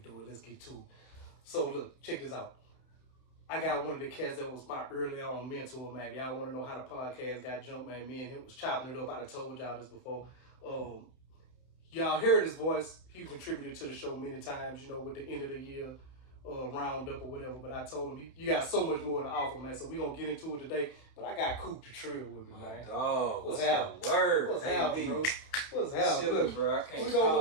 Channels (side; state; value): right; late; 31 ms